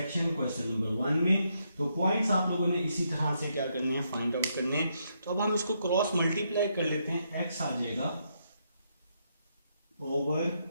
question number 1 में। तो पॉइंट्स आप लोगों ने इसी तरह से क्या करने हैं, फाइंड आउट करने हैं। तो अब हम इसको क्रॉस मल्टीप्लाई कर लेते हैं। x आ जाएगा ओवर,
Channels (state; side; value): inverted; both; correlation -0.78